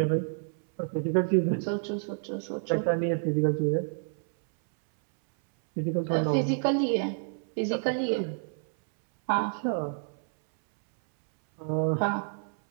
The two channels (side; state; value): left; silent; 59 dB below the other